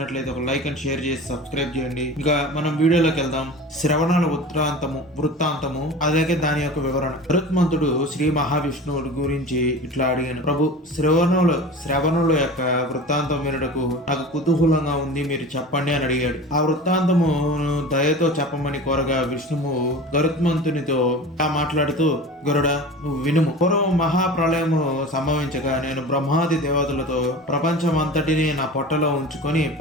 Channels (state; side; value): normal; both; correlation 0.35